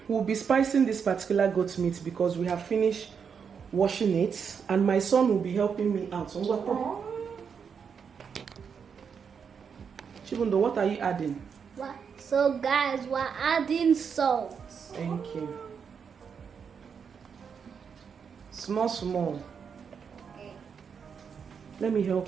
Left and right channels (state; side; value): quieter; left; 6.6 dB